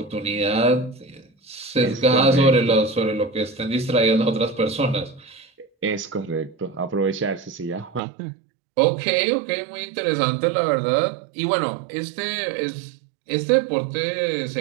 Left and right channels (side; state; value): left; drops out; at 8.0 s